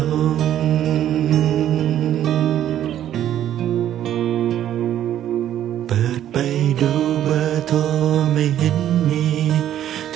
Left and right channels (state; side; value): quieter; left; 11.3 dB